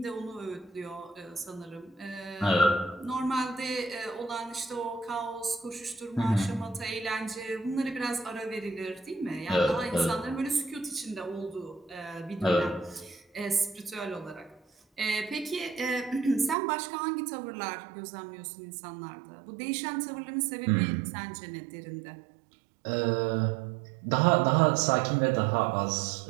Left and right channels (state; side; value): drops out; left; at 16.6 s